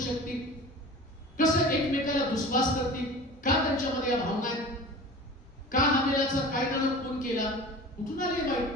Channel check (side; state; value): both; normal; correlation 0.37